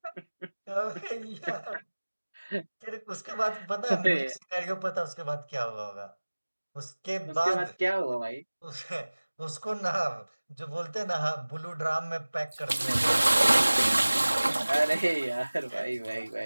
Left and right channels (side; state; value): both; inverted; correlation -1.00